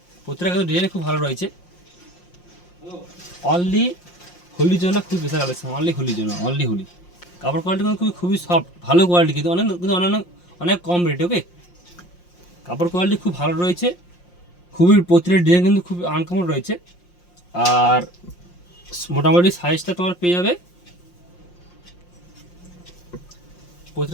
প্রত্যেকটা কিন্তু ডিজাইন খুব ভালো রয়েছে। অনলি হোলির জন্য খুব বেশি কালেকশান, অনলি হোলির জন্য, অনলি হোলি। কাপড় কোয়ালিটি কিন্তু খুবই সফট, ভালো কোয়ালিটি, কিন্তু অনেক অনেক কম রেটে। ওকে, কাপড় কোয়ালিটি খুব ভালো রয়েছে, খুবই প্রতিটা ডিজাইন কিন্তু খুব আনকমন রয়েছে। আর মোটামুটি সাইজটা তোমার পেয়ে যাবে,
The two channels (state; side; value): late; right; 5.7 ms